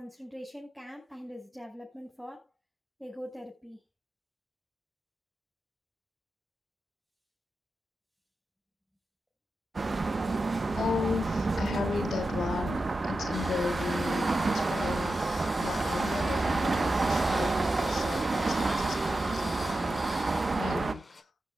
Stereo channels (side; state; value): both; normal; correlation 0.91